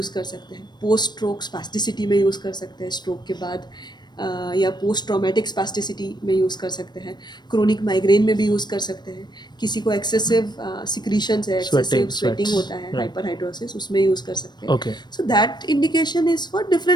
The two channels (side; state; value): right; late; 0.21 ms